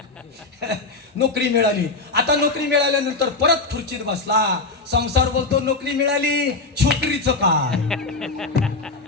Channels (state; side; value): quieter; right; 3.6 dB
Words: नोकरी मिळाली. आता नोकरी मिळाल्यानंतर परत खुर्चीत बसला. संसार बोलतो नोकरी मिळाली, छोकरीचं काय?